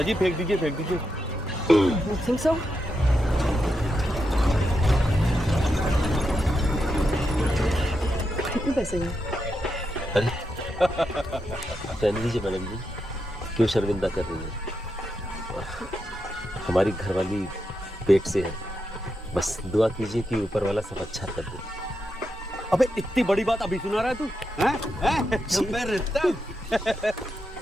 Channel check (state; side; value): normal; both; correlation 0.85